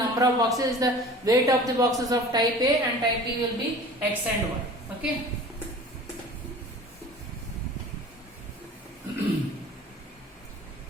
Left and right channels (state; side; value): normal; both; correlation 0.42